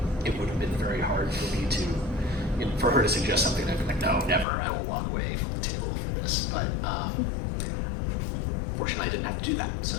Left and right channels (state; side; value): drops out; right; at 4.5 s